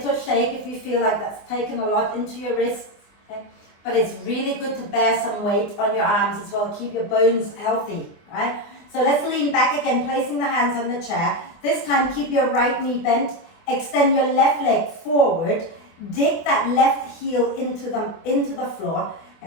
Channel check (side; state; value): right; late; 24 ms